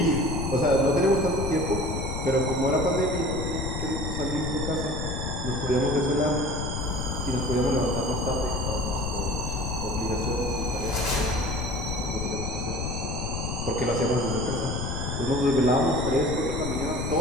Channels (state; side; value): noise; left; rumble, 3 dB below the sound